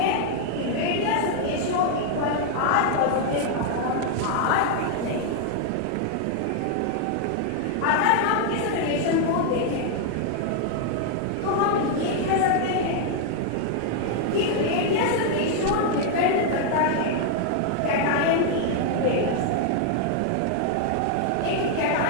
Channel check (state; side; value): different; both; correlation 0.00